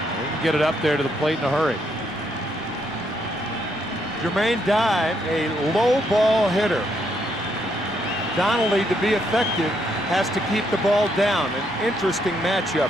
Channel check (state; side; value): normal; both; correlation 0.75